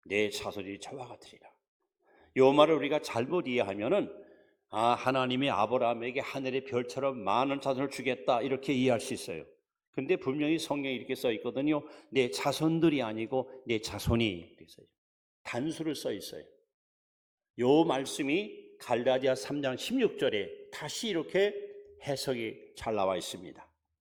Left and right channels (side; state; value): both; identical; correlation 1.00